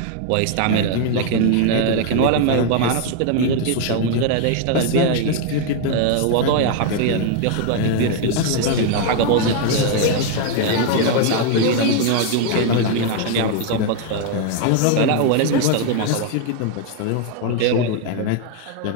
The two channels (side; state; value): both; different; correlation 0.00